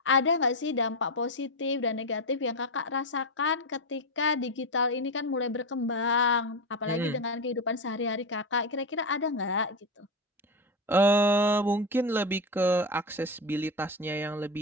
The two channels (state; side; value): normal; both; correlation 0.14